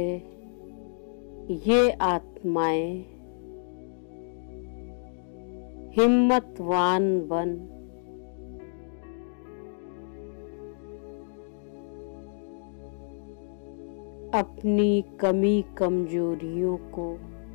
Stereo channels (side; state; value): right; silent; digital silence